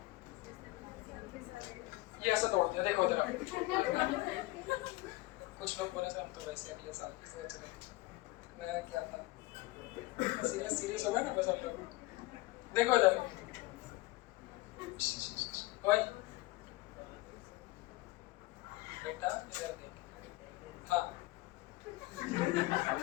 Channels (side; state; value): right; quieter; 20.0 dB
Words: ये ऐसा तोड़ दिया देखो जरा कुछ लोग बोले थे हम तो वैसे अगले साल की सोच रहे मैं क्या था सीरियस हो गए ना बस हम लोग देखो इधर भाई बेटा इधर देख हाँ